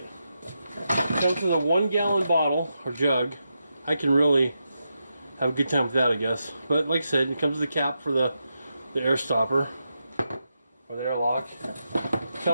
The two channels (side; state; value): both; inverted; correlation -0.86